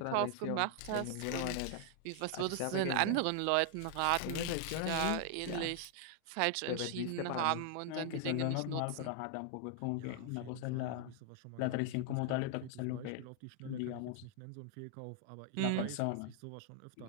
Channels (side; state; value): both; different; correlation 0.00